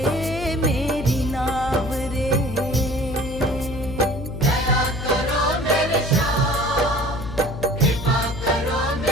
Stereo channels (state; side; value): noise; left; hum, 9 dB below the sound